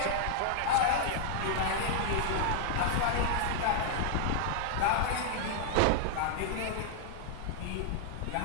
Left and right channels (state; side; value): different; both; correlation 0.00